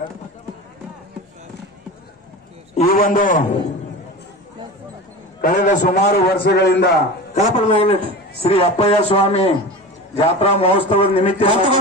ಈ ಒಂದು ಕಳೆದ ಸುಮಾರು ವರ್ಷಗಳಿಂದ ಶ್ರೀ ಅಪ್ಪಯ್ಯ ಸ್ವಾಮಿ ಜಾತ್ರಾ ಮಹೋತ್ಸವದ ನಿಮಿತ್ತ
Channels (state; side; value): normal; both; correlation 0.31